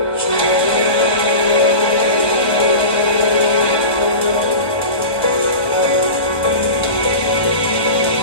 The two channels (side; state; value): right; late; 1.3 ms